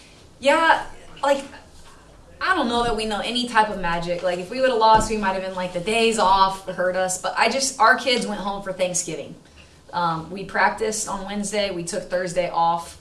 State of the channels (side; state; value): both; identical; correlation 1.00